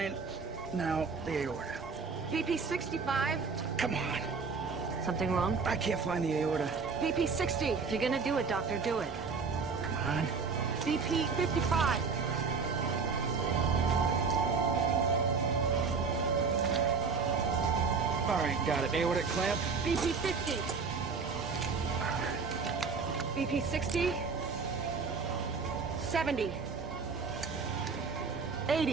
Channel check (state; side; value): quieter; left; 5.0 dB